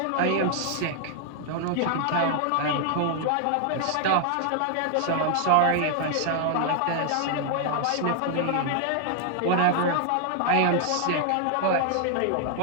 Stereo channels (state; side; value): different; both; correlation 0.00